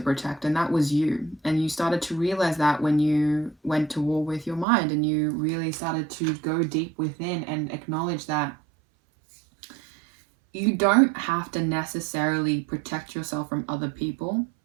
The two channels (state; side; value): drops out; left; at 4.7 s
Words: and that was you. And you started to realize that when you went to war with your mind, and you really started to go deep within and acknowledge that you don't have to necessarily protect yourself from other people.